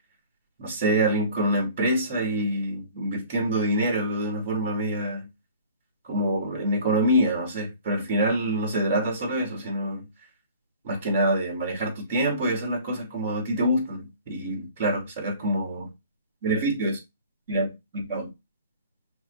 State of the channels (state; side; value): inverted; both; correlation -0.47